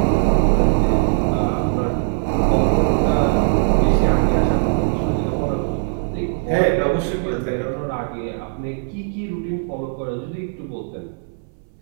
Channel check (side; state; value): left; silent; 62 dB below the other